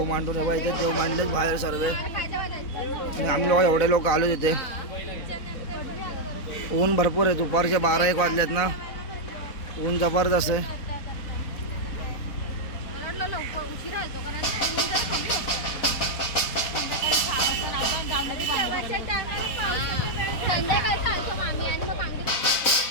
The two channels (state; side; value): late; right; 4.0 ms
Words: मांडून इथे देव मांडलेच बाहेर सर्व. आणि आम्ही लोक एवढे लोक आलो तिथे. ऊन भरपूर आहे. दुपारचे 12-1 वाजलेत ना. ऊन जबरदस्त आहे.